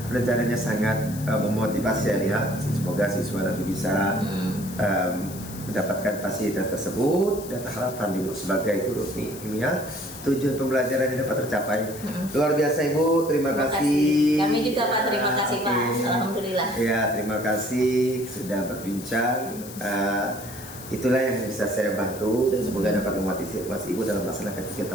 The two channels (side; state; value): left; noise; hiss, 14 dB below the sound